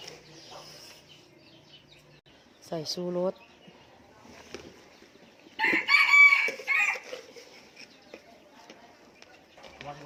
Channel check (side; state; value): both; identical; correlation 1.00